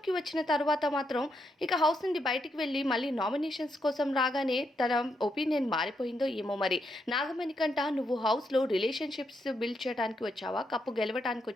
వచ్చిన తర్వాత మాత్రం ఇక హౌస్ నుండి బయటికి వెళ్ళి మళ్ళీ నామినేషన్స్ కోసం రాగానే తన ఒపీనియన్ మారిపోయిందో ఏమో మరి. నాగమణికంట, నువ్వు హౌస్లో రిలేషన్షిప్స్ బిల్డ్ చేయడానికి వచ్చావా, కప్పు గెలవడానికి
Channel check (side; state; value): both; normal; correlation 0.80